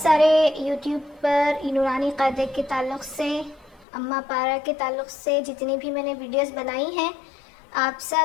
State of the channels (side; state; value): right; drops out; at 3.9 s